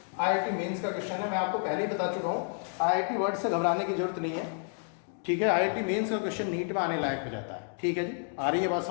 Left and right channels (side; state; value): right; silent; 58 dB below the other